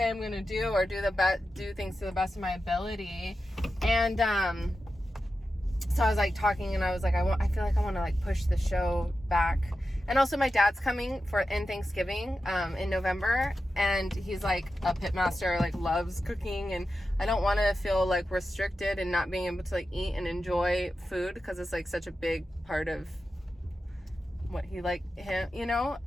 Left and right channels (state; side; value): normal; both; correlation 0.91